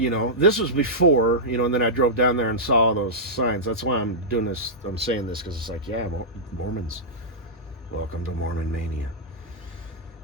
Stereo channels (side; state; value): both; normal; correlation -0.12